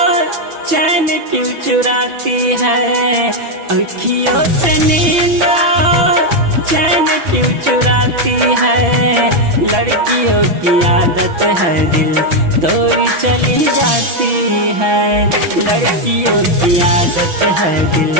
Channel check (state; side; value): late; left; 6.0 ms